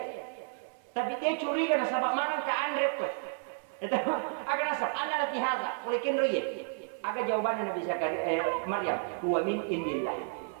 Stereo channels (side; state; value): left; silent; 57 dB below the other